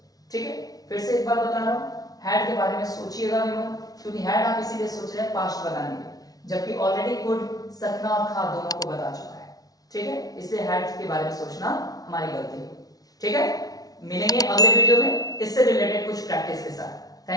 ठीक है। फिर से एक बार बता रहा हूं, हैड के बारे में सोचिएगा भी मत, क्योंकि हैड आप इसीलिए सोच रहे हैं पास्ट बताने के, जबकि ऑलरेडी कुड सकना और था दोनों को बता चुका है। ठीक है। इसलिए हैड के बारे में सोचना हमारी गलती है। ठीक है। मिलेंगे अगले वीडियो में इससे रिलेटेड कुछ प्रैक्टिस के साथ।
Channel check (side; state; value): right; late; 0.18 ms